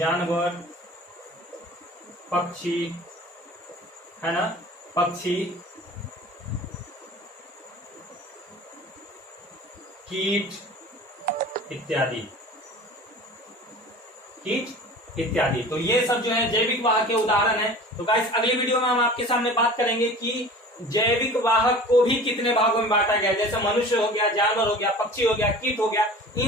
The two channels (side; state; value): both; normal; correlation 0.41